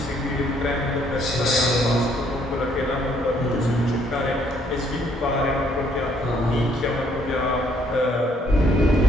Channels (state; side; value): normal; both; correlation 0.67